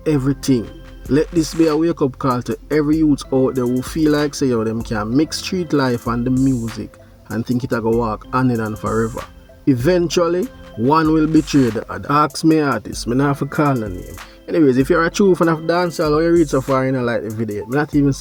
everything. Let this be a wake-up call to every youth out there who feel like say yo, them can mix street life and the music and think it a go walk hand in hand forever. Eventually, one will betray the other. Ask me artist, me not have to call the name. Anyways, if you're a true fan of dancehall or you read so far and you like the video, me not even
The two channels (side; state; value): both; identical; correlation 1.00